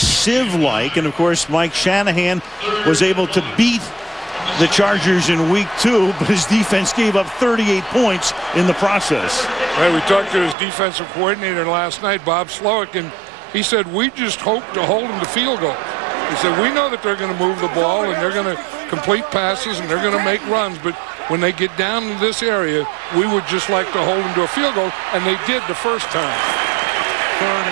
and of course Mike Shanahan was able to beat the Chargers in week 2, but his defense gave up 38 points in the process. Right, we talked to his defensive coordinator last night, Bob Slowick, and he said, we just hope to hold them to field goals. He said, we know that they're going to move the ball and they're going to complete passes and they're going to make runs, but when they get down to this area, we would just like to hold them to a field goal, and they did the first time. 3rd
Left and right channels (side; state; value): left; drops out; at 10.6 s